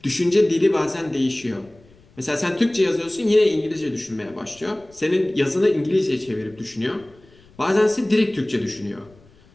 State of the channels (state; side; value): noise; left; rumble, 27 dB below the sound